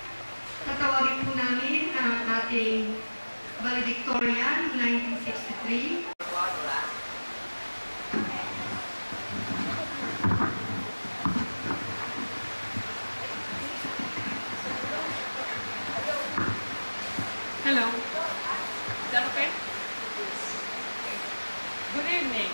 tatawagin po namin ang ating valedictorian 1963. Hello. Is that okay? Good evening.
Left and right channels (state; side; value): inverted; both; correlation -1.00